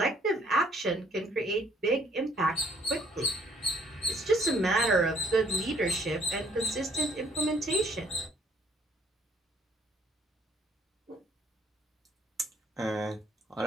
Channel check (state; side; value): normal; both; correlation 0.63